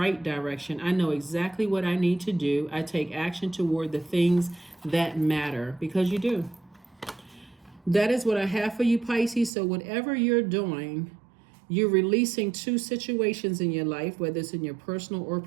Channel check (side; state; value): left; drops out; at 9.5 s